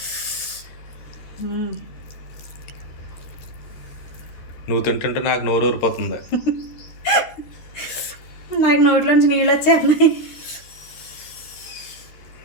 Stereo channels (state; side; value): late; right; 13 ms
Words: నువ్వు తింటుంటే నాకు నోరు ఊరిపోతుంది. నాకు నోట్లోంచి నీళ్ళు వచ్చేస్తున్నాయి.